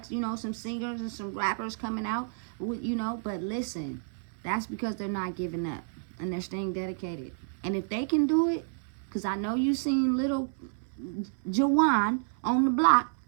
some singers and some rappers coming out. But listen, that's because they're not giving up and they're staying dedicated. And if they can do it, because I know you seen little Jawan on the block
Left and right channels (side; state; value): left; silent; 58 dB below the other